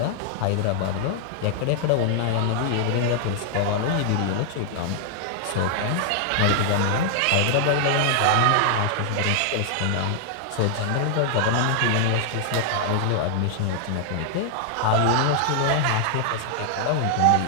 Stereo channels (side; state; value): both; different; correlation -0.01